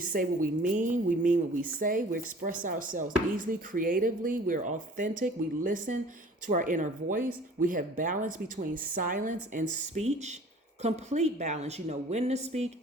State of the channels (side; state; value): both; normal; correlation 0.48